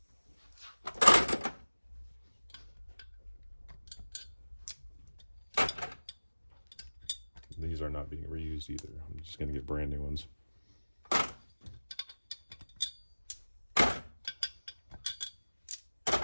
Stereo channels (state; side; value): inverted; both; correlation -1.00